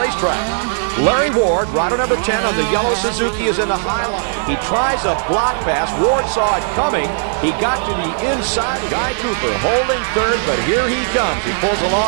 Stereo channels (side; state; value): left; silent; 68 dB below the other